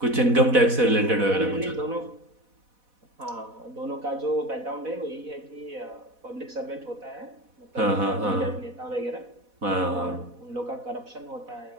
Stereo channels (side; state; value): left; late; 4.1 ms